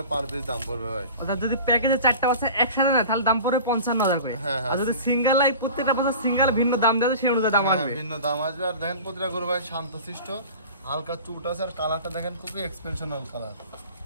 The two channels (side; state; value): both; inverted; correlation -0.38